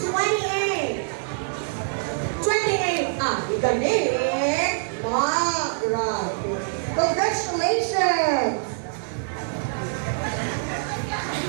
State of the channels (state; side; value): silent; left; digital silence